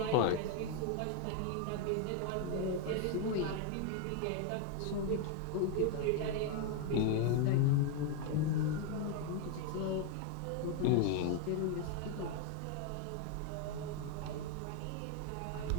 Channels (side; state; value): both; different; correlation 0.01